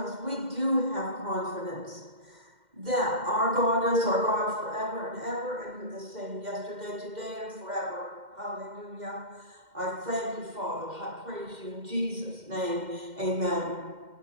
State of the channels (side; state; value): left; late; 2.1 ms